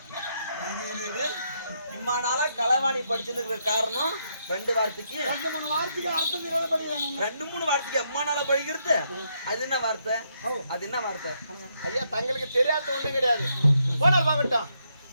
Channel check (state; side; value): inverted; both; correlation -0.77